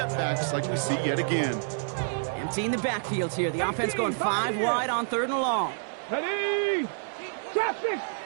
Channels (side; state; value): left; silent; digital silence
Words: like we see yet again. Emptying the backfield here. The offense going 5 wide on third and long. Ready? Top 6.